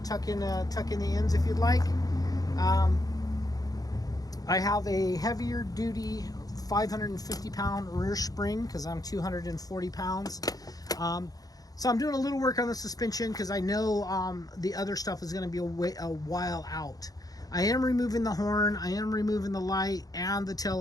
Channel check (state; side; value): late; right; 0.18 ms